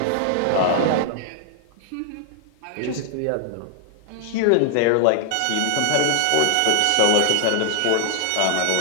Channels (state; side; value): different; both; correlation 0.00